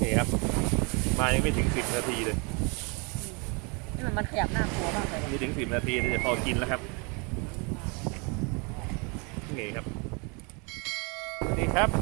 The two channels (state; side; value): quieter; left; 32.0 dB